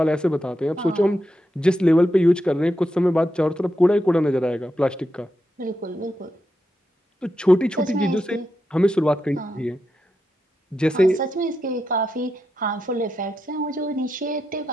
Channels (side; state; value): both; normal; correlation 0.86